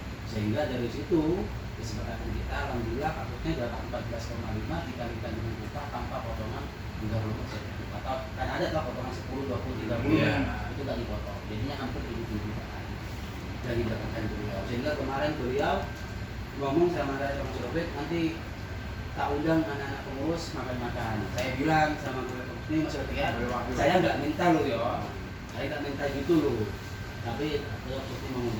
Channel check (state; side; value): identical; both; correlation 1.00